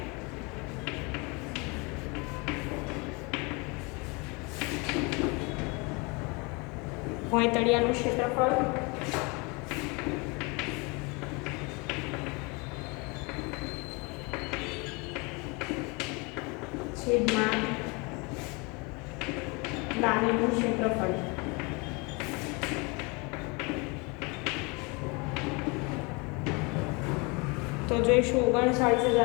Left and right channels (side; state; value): right; quieter; 28.8 dB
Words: ભોંય તળિયાનું ક્ષેત્રફળ છેદમાં લાદીનું ક્ષેત્રફળ. તો જોઈશું